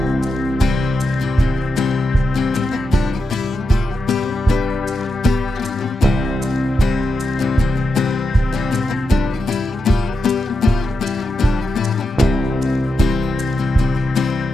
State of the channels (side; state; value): both; normal; correlation 0.88